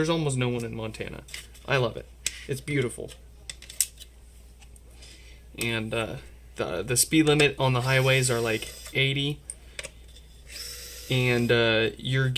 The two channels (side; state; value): both; identical; correlation 1.00